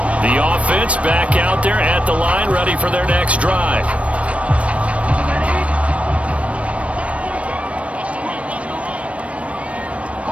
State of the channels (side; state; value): left; late; 0.063 ms